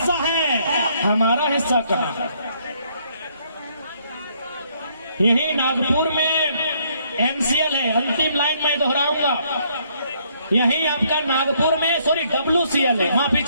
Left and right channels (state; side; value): inverted; both; correlation -0.68